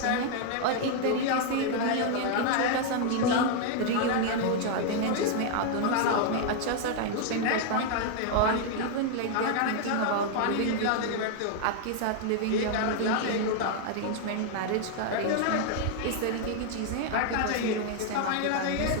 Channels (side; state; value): both; different; correlation 0.00